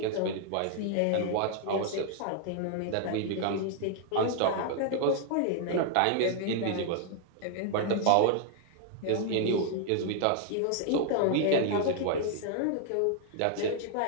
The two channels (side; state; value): both; different; correlation 0.00